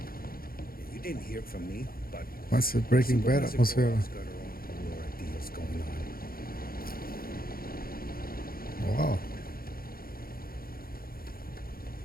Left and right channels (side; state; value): right; late; 0.43 ms